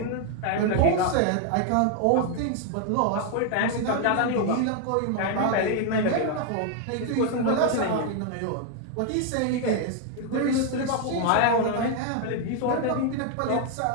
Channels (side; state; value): both; different; correlation 0.00